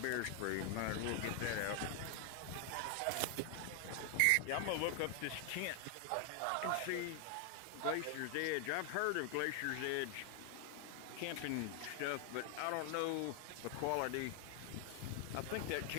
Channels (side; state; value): both; different; correlation 0.00